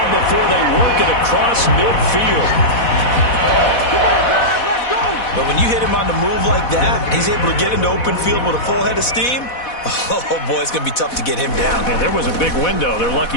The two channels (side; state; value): right; late; 4.1 ms